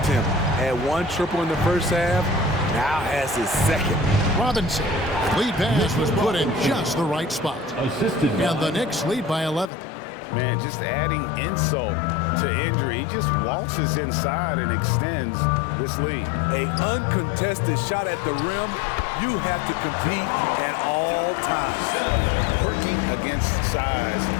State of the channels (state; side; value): drops out; right; at 9.7 s